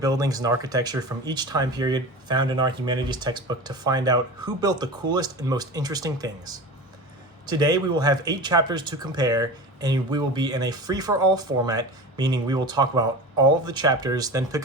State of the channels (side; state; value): both; normal; correlation 0.31